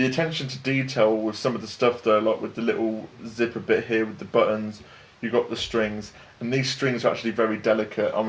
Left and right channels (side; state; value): both; identical; correlation 1.00